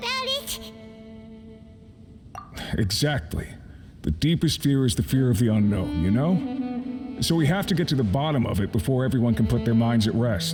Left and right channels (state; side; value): identical; both; correlation 1.00